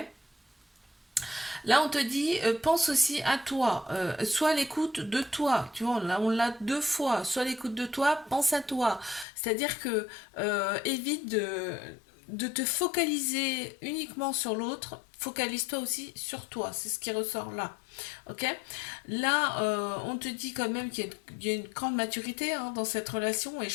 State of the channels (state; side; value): drops out; right; at 9.2 s